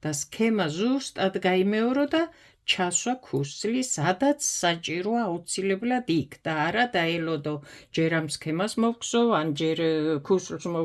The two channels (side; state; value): both; identical; correlation 1.00